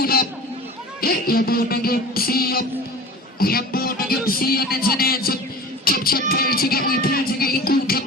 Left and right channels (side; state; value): both; normal; correlation 0.36